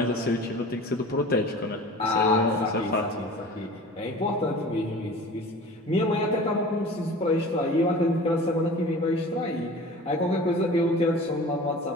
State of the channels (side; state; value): both; normal; correlation 0.40